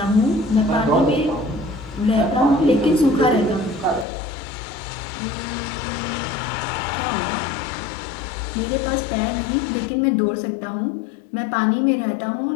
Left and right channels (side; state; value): right; drops out; at 4.0 s